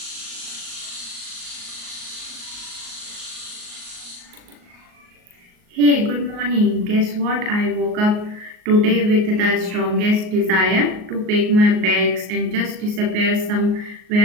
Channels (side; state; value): left; late; 38 ms